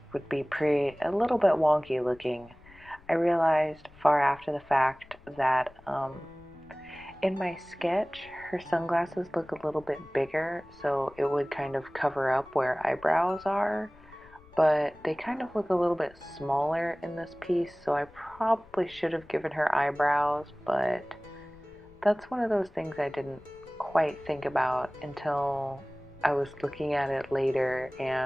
would be a little bit wonky looking. I realized far after the fact that in my sketch, her sunglasses look a little bit bigger, so it would kind of cover up where eyebrows are, but they kind of look a little bit smaller in this piece, so I probably should have given her eyebrows, but that's one of those things I didn't quite think about until I was looking at it later,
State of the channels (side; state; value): left; noise; rumble, 25 dB below the sound